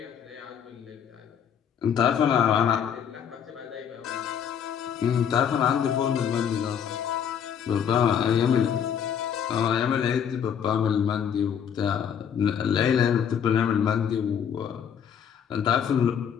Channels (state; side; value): quieter; right; 8.2 dB